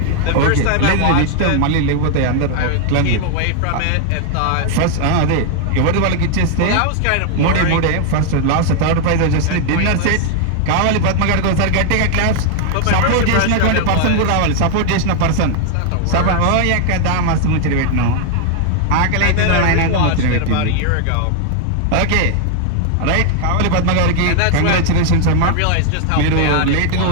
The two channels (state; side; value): different; both; correlation 0.00